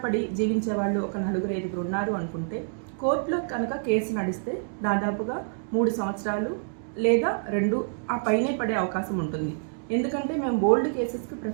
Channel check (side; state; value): left; silent; digital silence